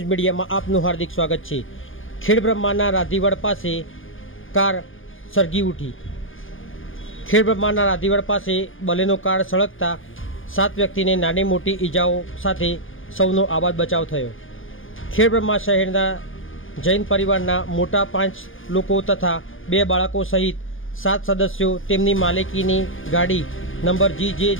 મીડિયામાં આપનું હાર્દિક સ્વાગત છે। ખેડબ્રહ્માના રાધીવડ પાસે કાર સળગી ઉઠી। ખેડબ્રહ્માના રાધીવડ પાસે બલેનો કાર સળગતા 7 વ્યક્તિને નાની મોટી ઈજાઓ સાથે સૌનો આબાદ બચાવ થયો। ખેડબ્રહ્મા શહેરના જૈન પરિવારના મોટા 5 લોકો તથા 2 બાળકો સહિત 7 સદસ્યો તેમની માલિકીની ગાડી નંબર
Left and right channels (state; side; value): late; right; 0.58 ms